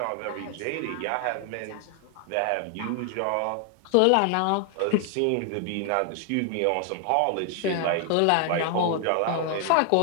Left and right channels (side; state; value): both; different; correlation 0.00